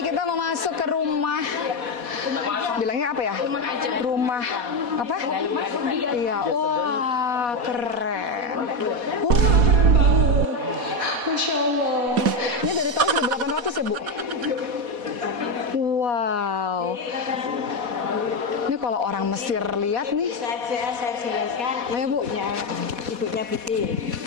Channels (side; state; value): left; late; 4.1 ms